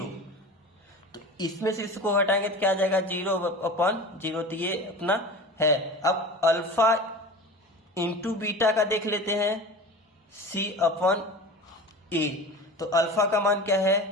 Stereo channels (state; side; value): normal; both; correlation 0.34